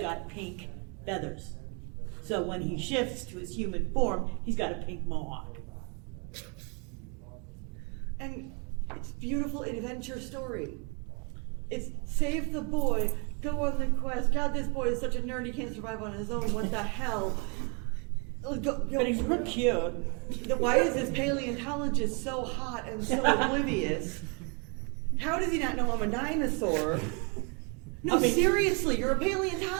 pink feathers. So when he shifts to his human form, he's got a pink mohawk. And it's beautiful adventure story. It's save the boy, go on the quest. God, this boy is such a nerd, he can't survive on his own. What the hell? But he's real cute. Why is this paleontologist so hot and so oblivious? How does he not know I'm a dinosaur? No, I mean- seriously, you're a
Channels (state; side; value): quieter; left; 34.0 dB